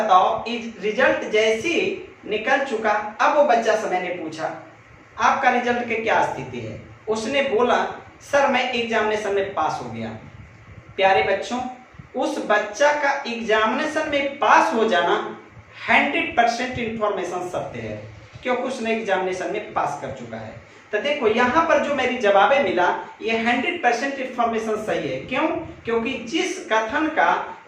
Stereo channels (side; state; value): both; identical; correlation 1.00